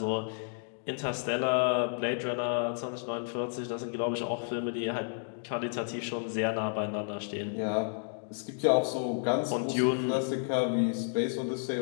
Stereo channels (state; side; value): silent; right; digital silence